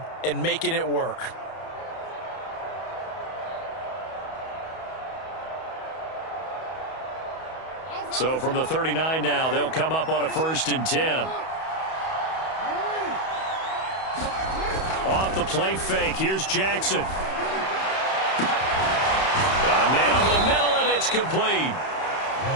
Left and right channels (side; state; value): right; late; 31 ms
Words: and making it work. So from the 39 now, they'll come up on a 1st and 10. Off the play fake, here's Jackson. Got a man over the middle, and it's complete.